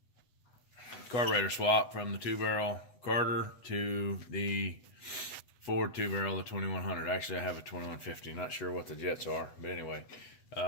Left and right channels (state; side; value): late; right; 8.1 ms